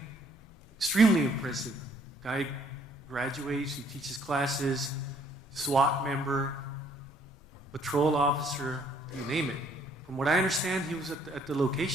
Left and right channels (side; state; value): both; normal; correlation 0.64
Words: Extremely impressive. Guy graduates, he teaches classes, SWAT member, patrol officer, you name it. From what I understand, he was at the